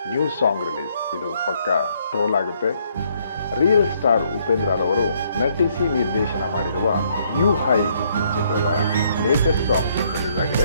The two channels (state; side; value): inverted; both; correlation -0.69